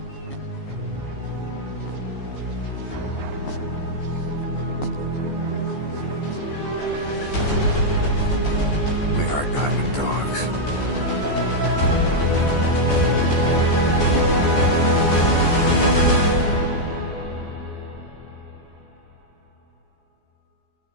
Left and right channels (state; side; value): late; right; 14 ms